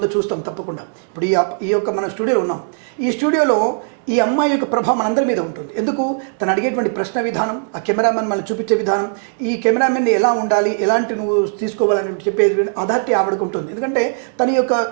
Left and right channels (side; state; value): left; silent; digital silence